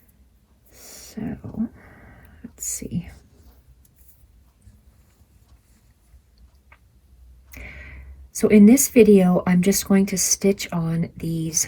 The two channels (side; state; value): both; identical; correlation 1.00